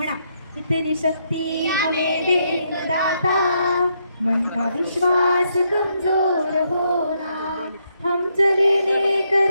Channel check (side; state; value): both; inverted; correlation -0.76